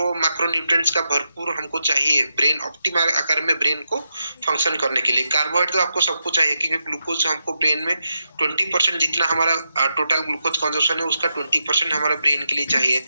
मैक्रोन्यूट्रिएंट्स का भरपूर हमको चाहिए ब्रेन ऑप्टिमल आकार में ब्रेन को फंक्शन करने के लिए। कार्बोहाइड्रेट तो आपको सबको चाहिए, क्योंकि ग्लूकोज हमको ब्रेन में 20% जितना हमारा टोटल ग्लूकोज कंजम्पशन है उसका 20% हमारा ब्रेन के लिए चाहिए।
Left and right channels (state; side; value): inverted; both; correlation -0.85